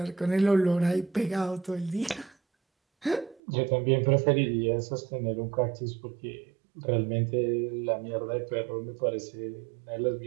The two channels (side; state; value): left; drops out; at 3.4 s